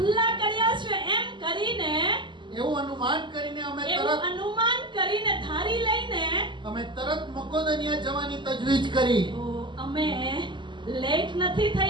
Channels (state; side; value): late; left; 0.23 ms